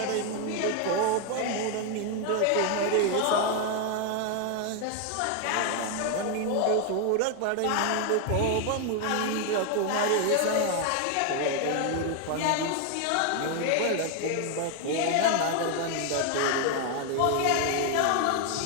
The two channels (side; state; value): both; different; correlation 0.01